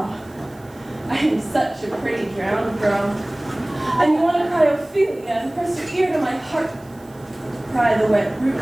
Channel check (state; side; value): noise; right; hiss, 28 dB below the sound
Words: I am such a pretty drowned girl. And you want to cry Ophelia and press your ear to my heart. Pry the wet